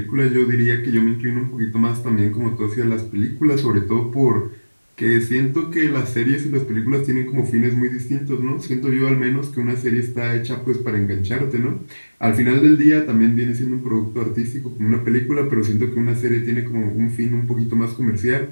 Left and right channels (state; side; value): inverted; both; correlation -1.00